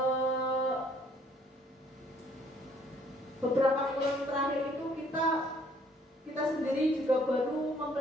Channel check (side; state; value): both; normal; correlation 0.62